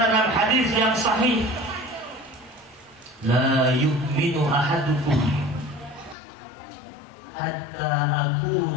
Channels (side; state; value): right; drops out; at 6.2 s